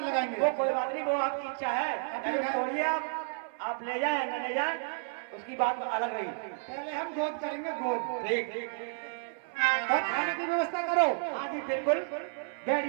वो कोई बात नहीं, वो आपकी इच्छा है। अगर छोड़िए, आप ले जाए न ले जाए, उसकी बात अलग रही। पहले हम गोद करेंगे, गोद। ठीक। और खाने की व्यवस्था करो। हाँ जी, बिल्कुल,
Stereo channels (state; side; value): silent; left; 57 dB below the other